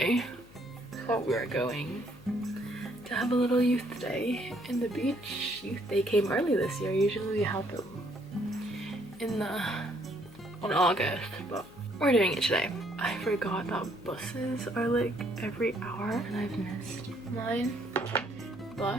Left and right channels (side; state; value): left; noise; hum, 22 dB below the sound